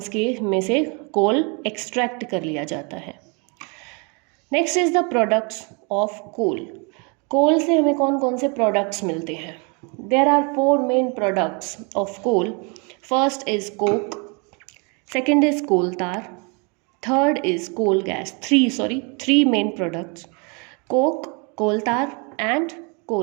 के में से कोल एक्सट्रैक्ट कर लिया जाता है. Next is the products of coal. Coal से हमें कौन कौन से प्रोडक्ट्स मिलते हैं. There are 4 main products of coal. First is coke, second is coal tar, third is coal gas. 3 main products, coke, coal tar and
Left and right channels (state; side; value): quieter; left; 33.2 dB